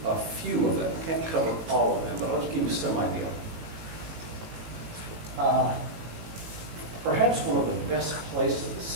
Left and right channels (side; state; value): left; late; 18 ms